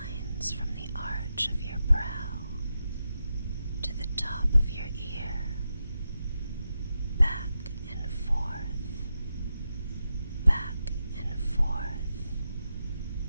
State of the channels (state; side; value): inverted; both; correlation -0.88